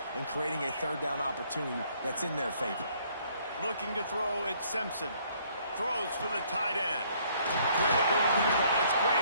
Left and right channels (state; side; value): inverted; both; correlation -0.64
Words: and creating a 3rd down opportunity that's in their favor. Looking to throw, it's Simpson. Throws for the tight end. Grab over the middle, it's